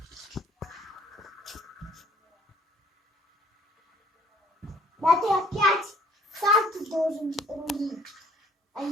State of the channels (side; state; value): both; normal; correlation 0.60